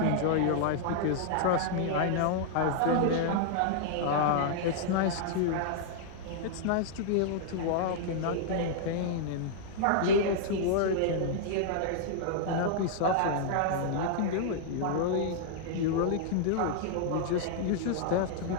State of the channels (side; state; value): both; different; correlation -0.01